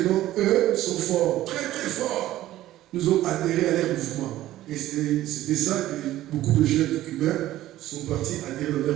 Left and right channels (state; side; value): quieter; left; 14.5 dB